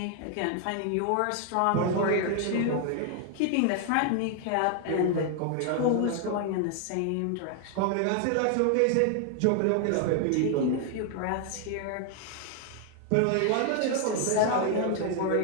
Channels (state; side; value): different; both; correlation 0.00